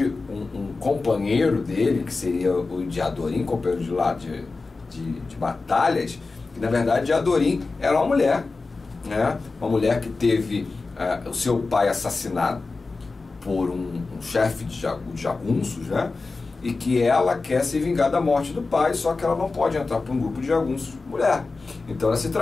um companheiro dele, que seria o Diadorim, companheiro de lá de batalhas, que na verdade Diadorim era uma mulher, né? Uma mulher que teve o seu pai assassinado por um chefe de jagunços, né? E que ela quer se vingar da morte do pai, só que ela não pode entrar para um grupo de jagunços mulher. Então ela se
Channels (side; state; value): right; quieter; 3.9 dB